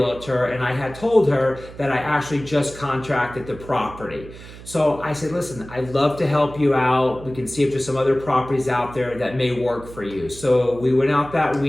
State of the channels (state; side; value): noise; right; hum, 16 dB below the sound